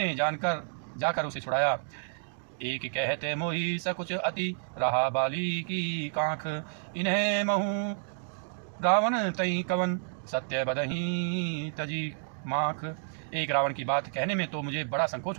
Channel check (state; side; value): silent; left; digital silence